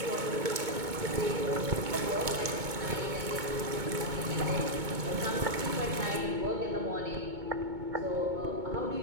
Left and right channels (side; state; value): left; late; 2.2 ms